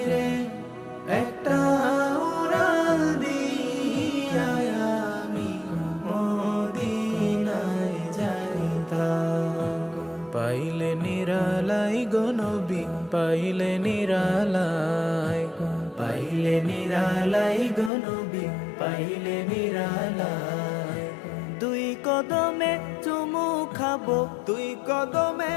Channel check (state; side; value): drops out; right; at 17.9 s